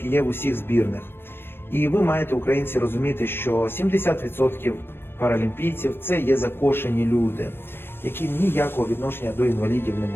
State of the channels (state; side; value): late; right; 0.10 ms